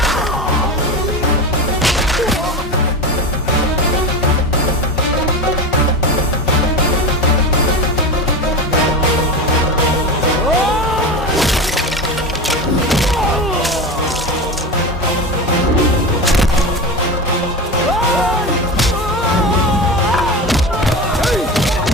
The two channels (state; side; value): normal; both; correlation 0.24